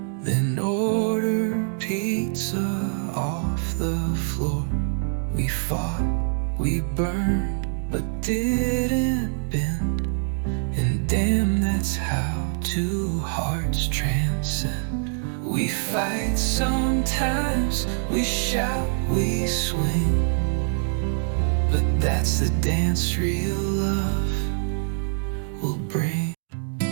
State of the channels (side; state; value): left; silent; digital silence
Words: then ordered pizza off the floor. We fought, we burned, but didn't bend. And damn, that's how two hearts transcend. We fight sometimes, we shout, we swing, but that's the dance real love will bring.